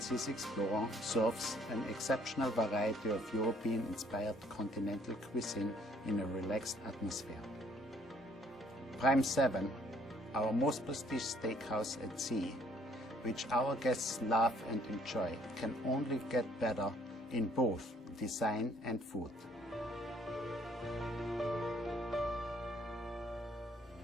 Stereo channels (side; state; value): both; normal; correlation 0.62